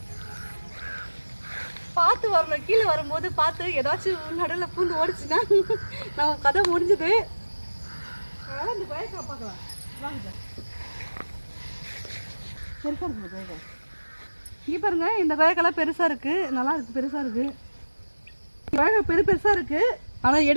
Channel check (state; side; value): inverted; both; correlation -1.00